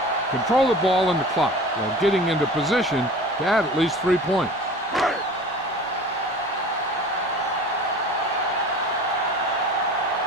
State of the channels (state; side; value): normal; both; correlation 0.40